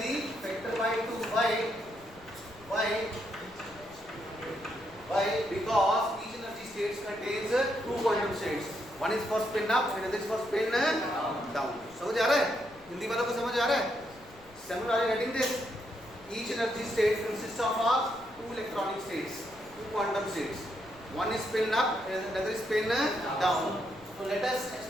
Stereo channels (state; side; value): noise; left; rumble, 24 dB below the sound